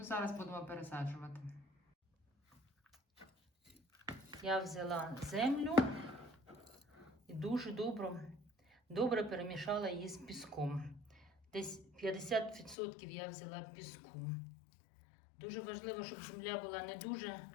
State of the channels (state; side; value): drops out; right; at 12.8 s